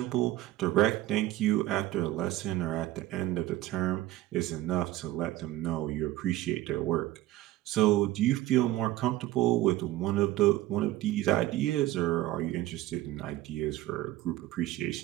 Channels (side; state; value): left; quieter; 15.4 dB